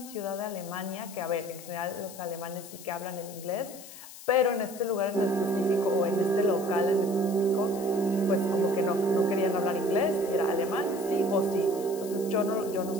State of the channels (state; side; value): noise; left; hiss, 16 dB below the sound